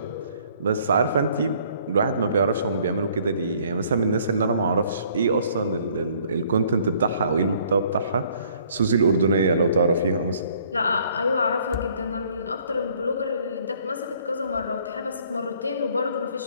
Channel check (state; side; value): inverted; both; correlation -0.60